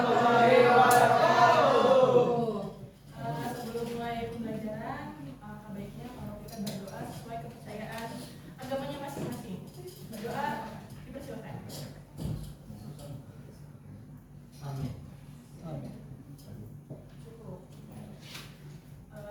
wabarakatuh. Sebelum mulai pembelajaran, baiknya kalau kita berdoa sesuai kepercayaan agamanya masing-masing. Berdoa dipersilakan. Amin. Cukup.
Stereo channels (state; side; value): identical; both; correlation 1.00